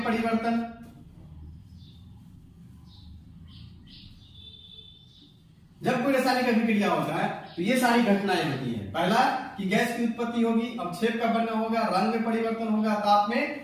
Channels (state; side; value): identical; both; correlation 1.00